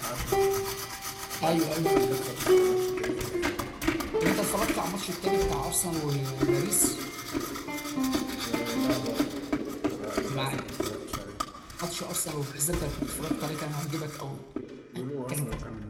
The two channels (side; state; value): both; identical; correlation 1.00